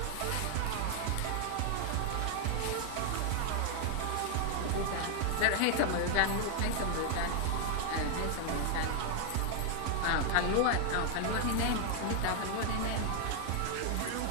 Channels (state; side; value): different; both; correlation 0.00